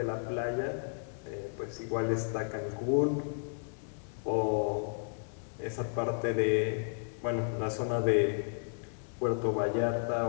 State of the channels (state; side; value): silent; right; digital silence